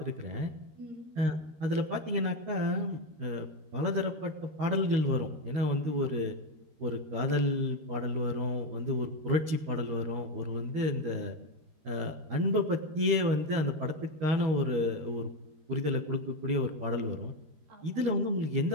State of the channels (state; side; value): late; left; 13 ms